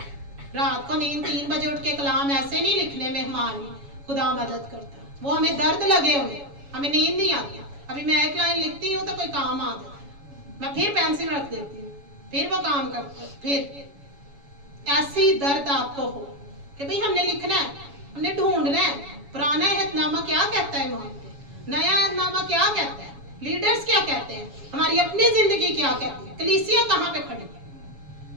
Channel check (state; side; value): late; left; 7.1 ms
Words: रात को नींद 3 बजे उठ के कलाम ऐसे नहीं लिखने में हमारी खुदा मदद करता। वो हमें दर्द लगे हुए, हमें नींद नहीं आती। अभी मैं एक लाइन लिखती हूँ तो कोई काम आ जाता, मैं फिर पेंसिल रख देती हूँ, फिर वो काम करता है। फिर ऐसी दर्द आपको हो कि भाई हमने लिखना है, हमने ढूंढना है। पुराना अहदनामा क्या कहता है ईमान पे, नया अहदनामा क्या कहता है, लीडर्स क्या कहते हैं, हमारी अपनी जिंदगी क्या कहती है, कलीसिया कहाँ पे खड़ी है।